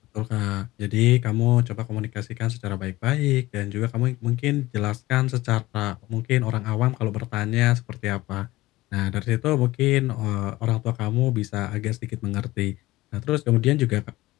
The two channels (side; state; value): right; quieter; 18.2 dB